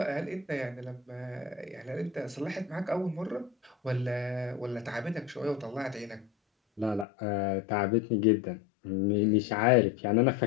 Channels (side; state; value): right; drops out; at 7.1 s